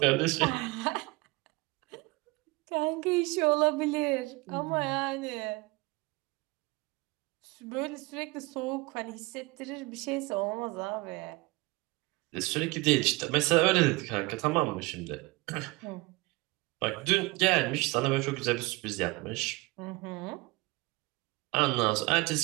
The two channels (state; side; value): quieter; left; 23.9 dB